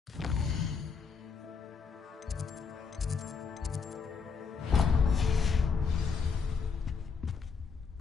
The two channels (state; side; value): quieter; right; 5.5 dB